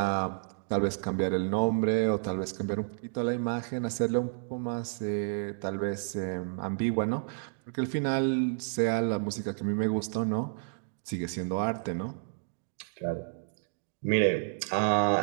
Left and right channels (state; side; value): silent; left; digital silence